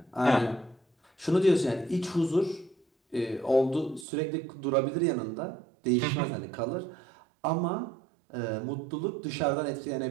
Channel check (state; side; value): drops out; left; at 4.0 s